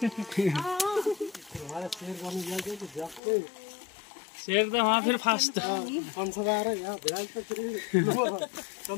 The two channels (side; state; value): right; drops out; at 3.2 s